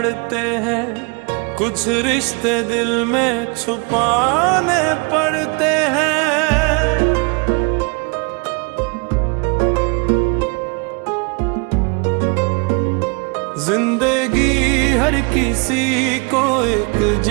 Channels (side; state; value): left; quieter; 32.4 dB